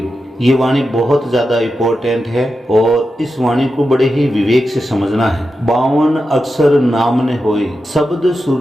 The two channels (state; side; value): normal; both; correlation 0.90